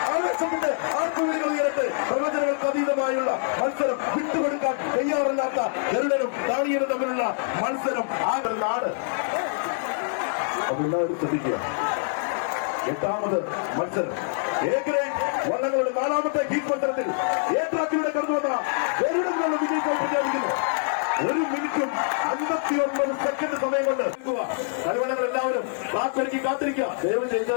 ആവേശത്തിന്റെ ആർപ്പുവിളികൾ ഉയരട്ടെ. പ്രവചനങ്ങൾക്ക് അതീതമായുള്ള മത്സരം വിട്ടുകൊടുക്കാൻ തയ്യാറില്ലാത്ത ഗരുഡനും ദാനിയേലും തമ്മിലുള്ള മത്സരം ആ ഒരു നാട്. അതെല്ലാവരും ശ്രദ്ധിക്കുക. 8ാമത് മത്സരം എ ഗ്രേഡ് വള്ളങ്ങളുടെ 4ാമത്തെ ഹീറ്റ് മത്സരത്തിൽ എ ട്രാക്കിലൂടെ കടന്നു വന്ന ഗരുഡനുള്ള വിജയത്തെ പ്രഖ്യാപിക്കുന്നു. 1 മിനിറ്റും 59 സെക്കൻഡ് സമയം കൊണ്ട് മലയാളികൾ എല്ലാവരും ട്രാക്ക് ഒരുക്കി കാത്തിരിക്കുക. ദയവ് ചെയ്ത്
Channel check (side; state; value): right; silent; digital silence